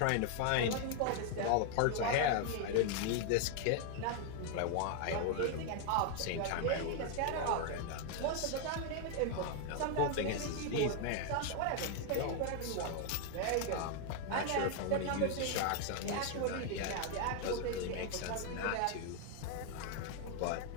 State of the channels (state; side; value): different; both; correlation 0.00